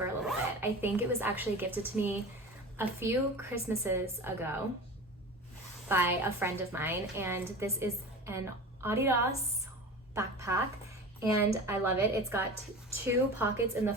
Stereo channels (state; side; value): normal; both; correlation 0.33